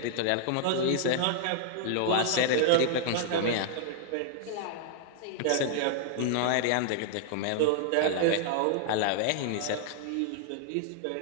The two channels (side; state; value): both; different; correlation -0.01